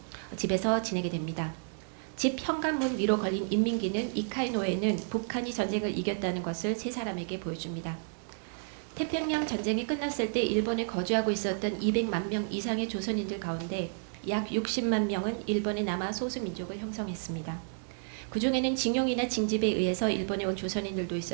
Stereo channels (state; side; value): silent; left; 57 dB below the other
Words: 집에서 지내게 됩니다. 집 현관문 위로 걸린 인민기는 이카이노에는 북한이 전쟁을 이겼다는 것을 세 사람에게 보여줍니다. 태평양 전쟁이 끝났을 때 일본에 거주하고 있었던 200만 명 이상의 조선인들 가운데 약 60만 명은 일본에 남아 소수민족을 형성했습니다. 그 중에는 징용이나 징집에 의해서 일본에 온 조선인들도